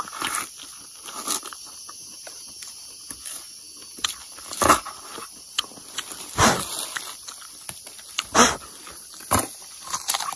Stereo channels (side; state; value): both; identical; correlation 1.00